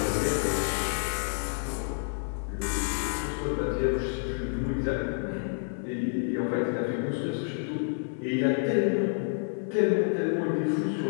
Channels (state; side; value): silent; right; digital silence